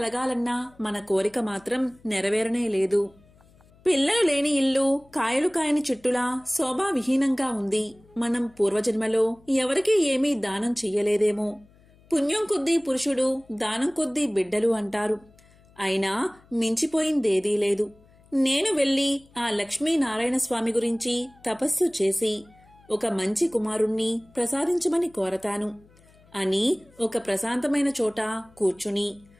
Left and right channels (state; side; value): noise; left; hum, 28 dB below the sound